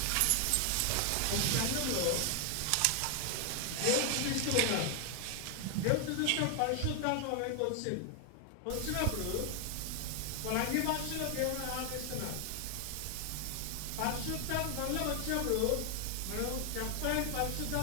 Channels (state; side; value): different; both; correlation 0.00